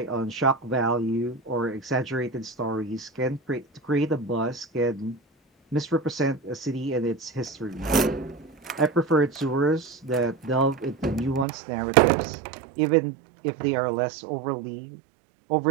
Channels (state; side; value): drops out; left; at 11.5 s